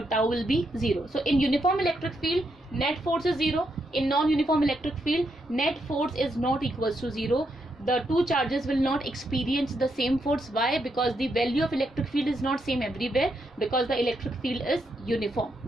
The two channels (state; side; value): normal; both; correlation 0.80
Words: will be 0. So in uniform electric field, net force is 0. In non-uniform electric field, net force is not equals to 0. The two charges will not experience the same force. Why? Because the value of electric field is not same everywhere, because the electric field is